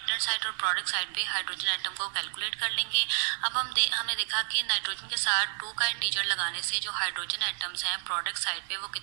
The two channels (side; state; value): left; silent; 58 dB below the other